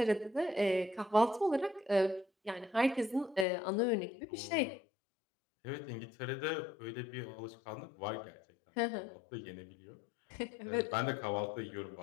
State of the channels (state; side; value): drops out; right; at 3.5 s